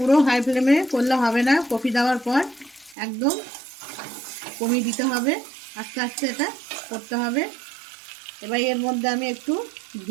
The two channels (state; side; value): drops out; left; at 3.0 s